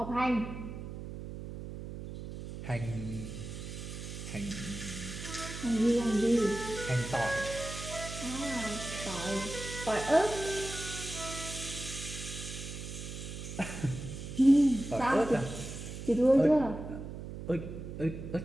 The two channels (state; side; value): noise; right; hum, 9 dB below the sound